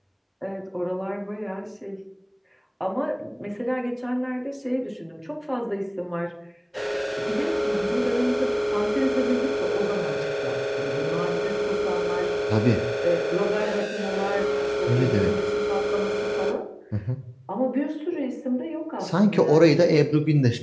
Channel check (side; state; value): both; identical; correlation 1.00